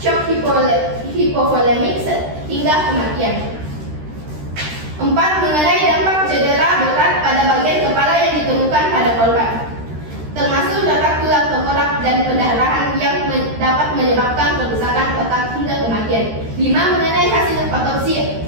hipovolemik hingga kematian. 4. Mengenai dampak cedera berat pada bagian kepala yang ditemukan pada korban, termasuk retak tulang tengkorak dan pendarahan yang dapat menyebabkan kerusakan otak hingga kematian. 5. Mengenai hasil otopsi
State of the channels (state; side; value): late; left; 13 ms